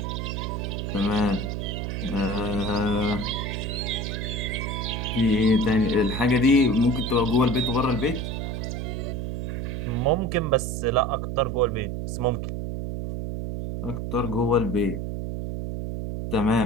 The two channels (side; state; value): right; noise; hum, 3 dB below the sound